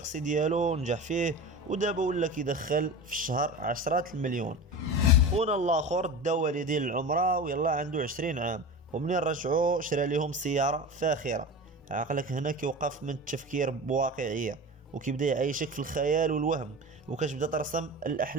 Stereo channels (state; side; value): normal; both; correlation 0.30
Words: ديالو ونجح فيه، ودابا ولا كيدخل في الشهر عشرات المليون. خونا الاخر دا والديه للعمره ويلا عنده 20 عام، ومنين رجعوا شرى لهم سياره فاخره. عقلك هنا كيوقف من التفكير بواقعيه وكيبدا يعيشك في الخيال والوهم، وكتبدا ترسم